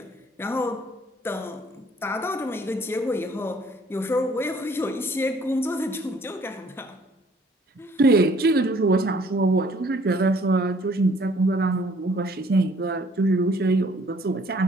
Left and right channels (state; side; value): normal; both; correlation 0.59